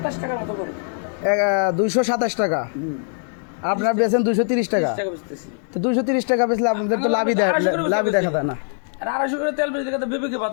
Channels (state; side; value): silent; right; 63 dB below the other